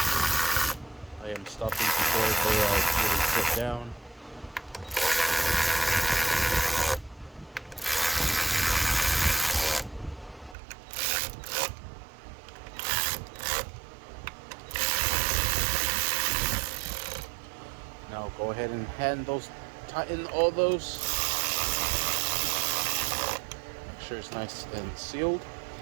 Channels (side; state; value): left; drops out; at 10.6 s